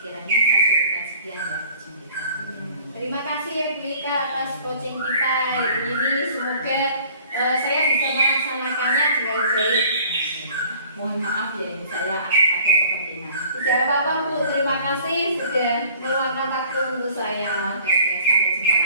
saya cukupkan sekian ya coaching kita. Terima kasih ya Bu Ika atas coaching kita ini. Semoga saya bisa melaksanakannya dengan baik. Mohon maaf ya, saya ada kepentingan. Tidak apa-apa Bu, terima kasih sudah meluangkan waktu untuk saya. Oke, sampai jumpa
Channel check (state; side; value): inverted; both; correlation -0.52